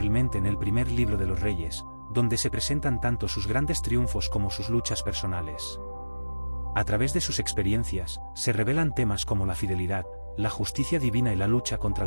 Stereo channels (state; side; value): inverted; both; correlation -1.00